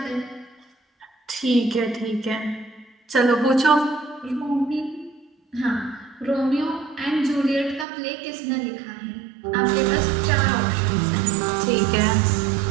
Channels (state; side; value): drops out; left; at 7.9 s